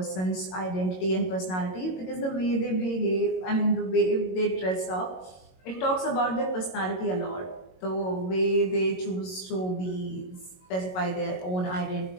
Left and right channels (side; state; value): right; late; 22 ms